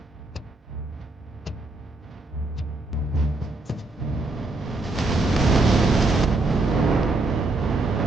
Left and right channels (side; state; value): left; quieter; 3.1 dB